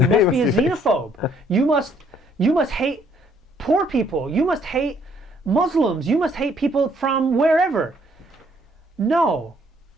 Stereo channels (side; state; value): both; normal; correlation 0.65